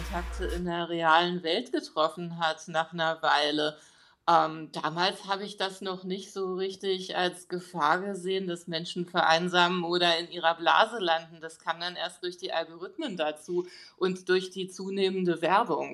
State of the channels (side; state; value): both; identical; correlation 1.00